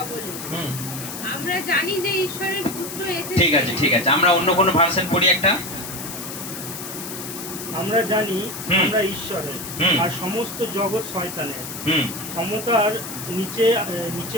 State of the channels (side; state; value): left; noise; hiss, 9 dB below the sound